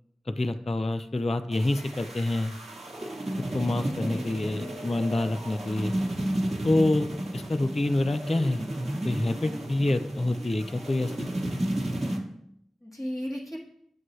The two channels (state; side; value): normal; both; correlation 0.97